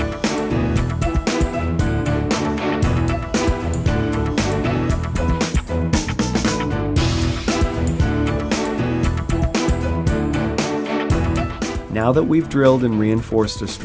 Now that we've drilled and reinforced a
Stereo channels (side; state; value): both; identical; correlation 1.00